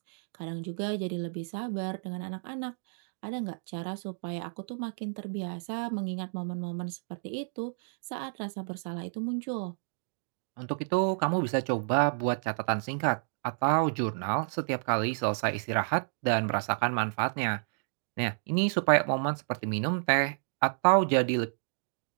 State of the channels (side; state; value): left; silent; digital silence